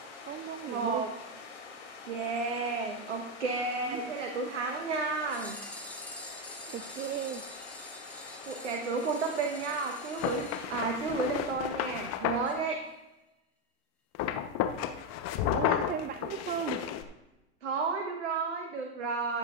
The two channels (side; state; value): both; normal; correlation 0.07